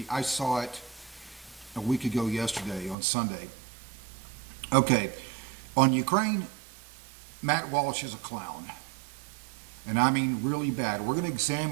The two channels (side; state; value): left; drops out; at 3.0 s